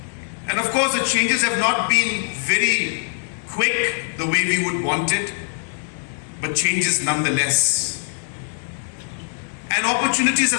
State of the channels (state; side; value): silent; right; digital silence